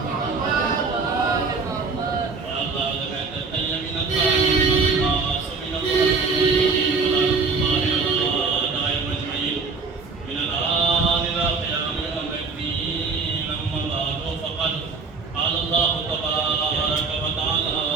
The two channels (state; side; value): quieter; left; 4.5 dB